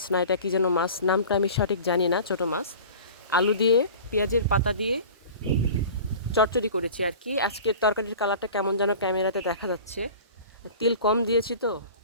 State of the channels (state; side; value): inverted; both; correlation -0.39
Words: না, এটা কি যেন মাছ, নামটা আমি সঠিক জানি না, ছোটো মাছ আলু দিয়ে পেঁয়াজের পাতা দিয়ে চচ্চড়ি করেছি আর কি। আজকের তরকারির কালারটা কেমন যেন ক্যামেরাতে দেখা যাচ্ছে, তেল কম দিয়েছি তো